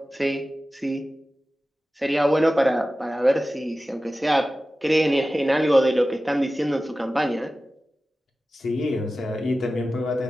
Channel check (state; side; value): normal; both; correlation 0.95